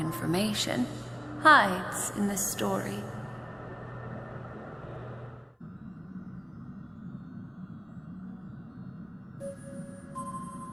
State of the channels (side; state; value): both; identical; correlation 1.00